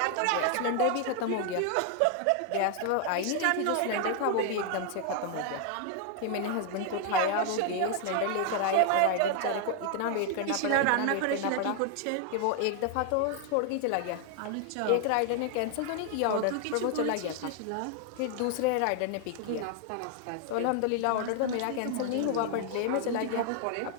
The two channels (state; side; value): different; both; correlation 0.00